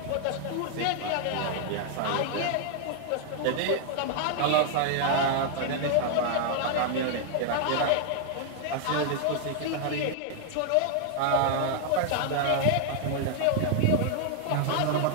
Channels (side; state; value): both; different; correlation -0.01